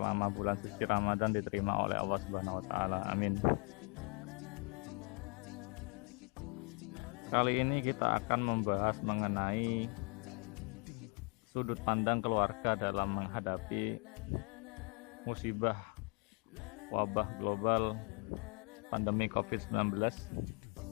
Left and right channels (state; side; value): quieter; right; 35.0 dB